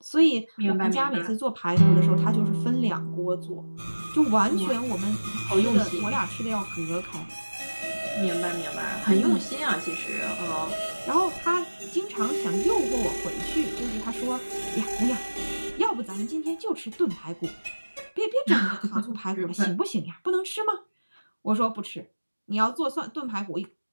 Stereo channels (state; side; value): inverted; both; correlation -1.00